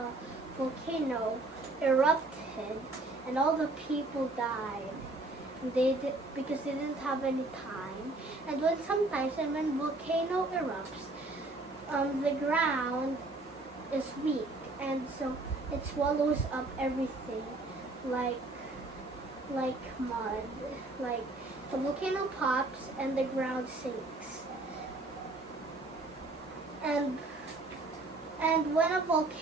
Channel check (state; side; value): quieter; left; 3.0 dB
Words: volcano, erupted, and all the people died. Because they didn't have any time. And when volcano erupts, the ground is weak, and so it swallows up everything like mud. Like the volcano pops and the ground sinks. And when a